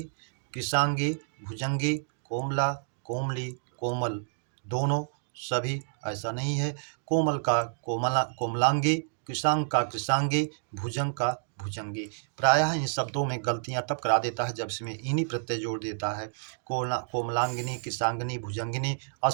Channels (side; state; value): left; silent; digital silence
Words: कृशांगी, भुजंगी, कोमला, कोमली, कोमल, दोनों, सभी ऐसा नहीं है। कोमल का कोमलांगी, कृशांग का कृशांगी, भुजंग का भुजंगी। प्रायः इन शब्दों में गलतियां तब करा देता है जब इसमें इन्हीं प्रत्यय जोड़ देता है। कोमलांगिनी, कृशांगिनी, भुजंगिनी